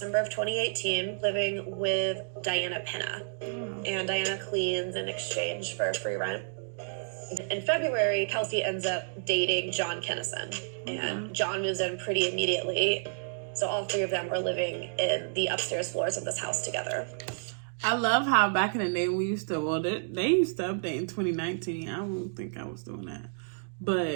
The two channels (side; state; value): left; silent; digital silence